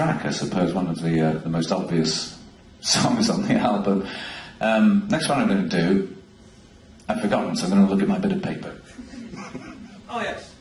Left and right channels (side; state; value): both; identical; correlation 1.00